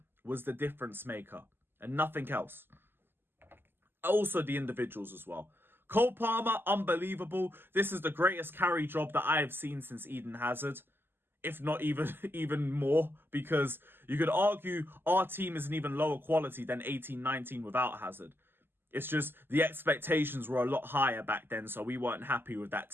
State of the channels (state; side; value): late; left; 0.10 ms